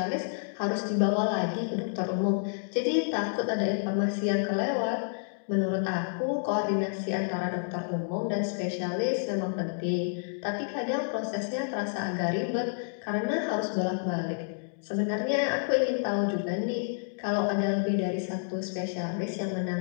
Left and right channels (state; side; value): silent; right; digital silence